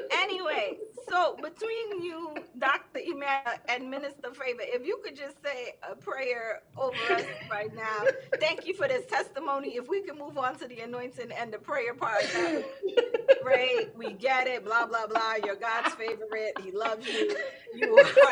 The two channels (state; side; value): identical; both; correlation 1.00